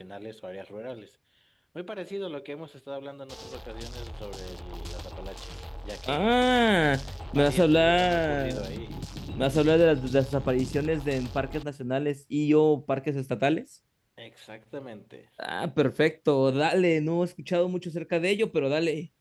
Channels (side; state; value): both; identical; correlation 1.00